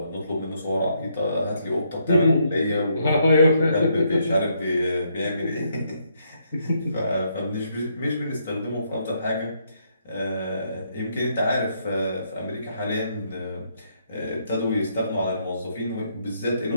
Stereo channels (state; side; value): inverted; both; correlation -0.74